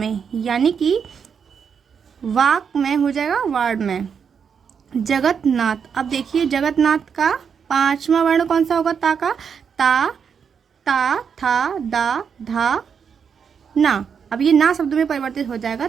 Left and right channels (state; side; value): quieter; left; 6.8 dB